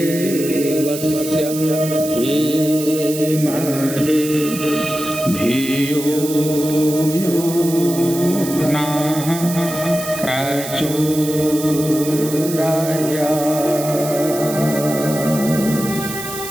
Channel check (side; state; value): right; noise; hiss, 9 dB below the sound